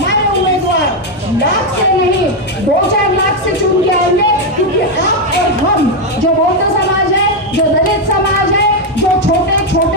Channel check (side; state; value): both; normal; correlation 0.04